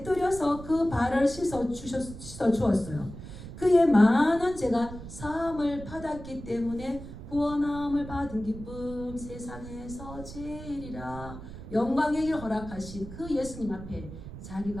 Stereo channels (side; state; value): right; noise; rumble, 12 dB below the sound